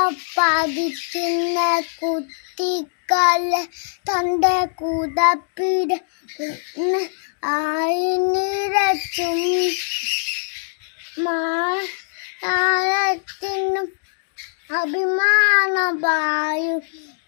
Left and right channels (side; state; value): right; silent; digital silence